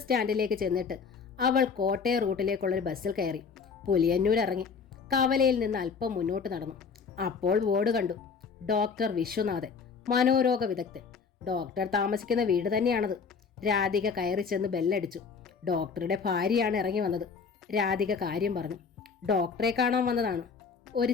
സ്റ്റാൻഡിലേക്ക് ചെന്നിട്ട് അവൾ കോട്ടയം റൂട്ടിലേക്കുള്ളൊരു ബസ്സിൽ കയറി. പുലിയന്നൂർ ഇറങ്ങി കവലയിൽ നിന്ന് അല്പം മുന്നോട്ട് നടന്നു. അപ്പോൾ ബോർഡ് കണ്ടു. ഡോക്ടർ വിശ്വനാഥൻ, മനോരോഗ വിദഗ്ധൻ. ഡോക്ടർ താമസിക്കുന്ന വീട് തന്നെയാണത്. രാധിക കയറി ചെന്ന് ബെല്ലടിച്ചു. ഡോക്ടറുടെ ഭാര്യയാണ് ഇറങ്ങി വന്നത്. രാധിക കാര്യം പറഞ്ഞു. ഡോക്ടറെ കാണാൻ വന്നതാണ്.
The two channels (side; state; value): right; quieter; 5.6 dB